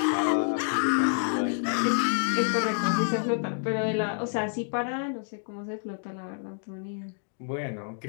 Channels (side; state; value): right; silent; digital silence